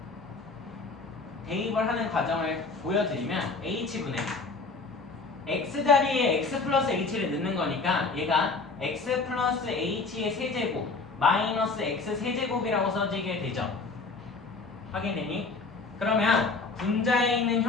대입을 하는 과정을 보여드리면 h분의 x 자리에 x 플러스 h를 넣는 거니까 얘가 x 플러스 h의 세제곱 마이너스 x 세제곱이라고 써지게 되죠. 확인되니? 그러면 분자에 있는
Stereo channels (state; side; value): quieter; right; 4.0 dB